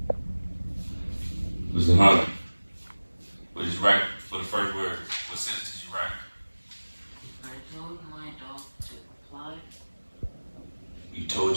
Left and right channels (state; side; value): inverted; both; correlation -1.00